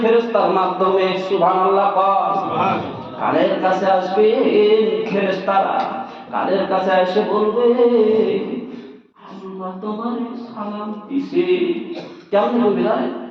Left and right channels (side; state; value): both; identical; correlation 1.00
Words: ফেরেশতার মাধ্যমে। সুবহানাল্লাহ। সুবহানাল্লাহ। কানের কাছে আসবে ফেরেশতারা, কানের কাছে এসে বলবে, আল্লাহ তোমার সালাম দিছে। কেমন বলবে জানেন?